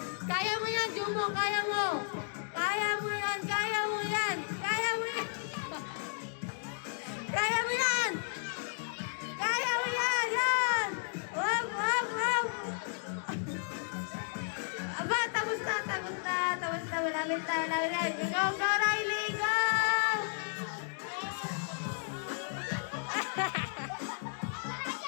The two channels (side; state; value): right; silent; digital silence